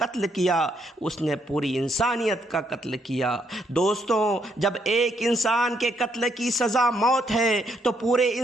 کیا اس نے پوری انسانیت کا قتل کیا۔ دوستوں، جب ایک انسان کے قتل کی سزا موت ہے تو پورے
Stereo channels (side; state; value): both; normal; correlation 0.74